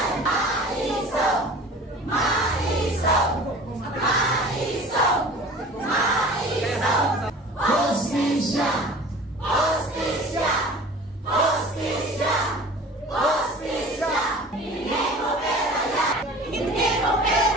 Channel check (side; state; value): both; normal; correlation 0.42